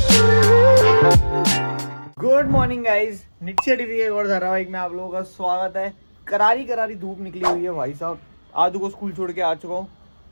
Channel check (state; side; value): inverted; both; correlation -1.00